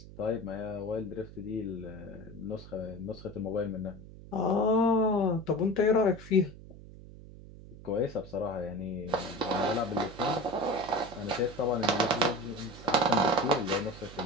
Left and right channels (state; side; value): noise; right; hum, 16 dB below the sound